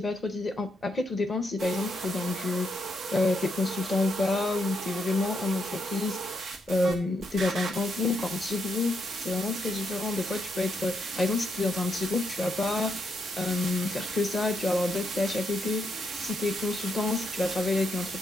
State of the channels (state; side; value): normal; both; correlation 0.79